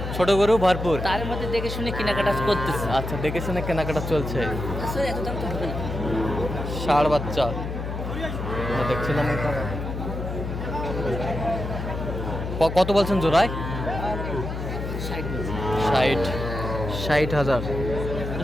ছোট গরু ভরপুর, তার মধ্যে দেখে শুনে কেনাকাটা করতেছে। আচ্ছা, দেখে শুনে কেনাকাটা চলছে। আসলে এত দাম তো হবে না। ষাঁড় বাচ্চা দেখছিলাম এখানে। কত বলছেন জোড়ায়? 60,000।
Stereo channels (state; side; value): noise; left; hum, 5 dB below the sound